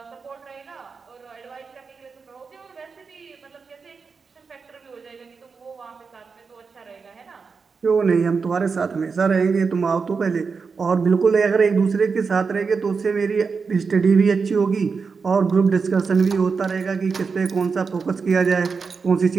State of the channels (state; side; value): quieter; left; 5.1 dB